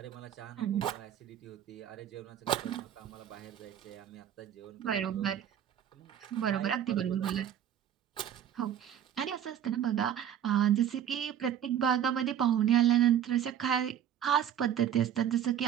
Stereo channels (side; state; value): left; quieter; 9.8 dB